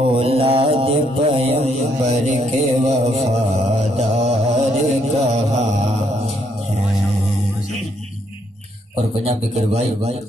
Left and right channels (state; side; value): normal; both; correlation 0.73